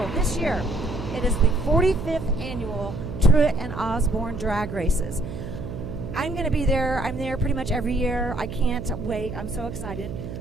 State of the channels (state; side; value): noise; right; hum, 8 dB below the sound